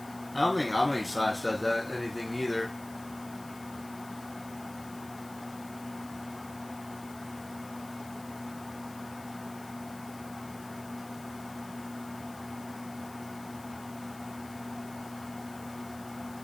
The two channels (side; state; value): left; noise; hiss, 18 dB below the sound